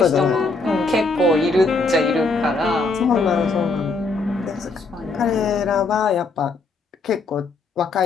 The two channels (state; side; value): quieter; right; 3.9 dB